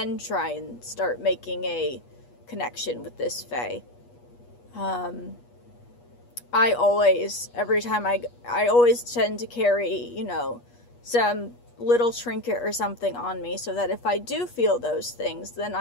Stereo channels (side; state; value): right; late; 8.3 ms